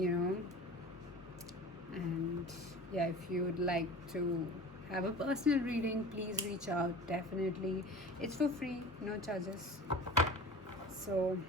know. And yeah, if you would like to have a personal reading, please reach out. Definitely, it's for free, no charges. So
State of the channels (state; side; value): normal; both; correlation 0.38